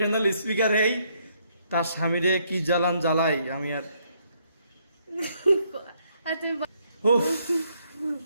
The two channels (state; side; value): inverted; both; correlation -0.72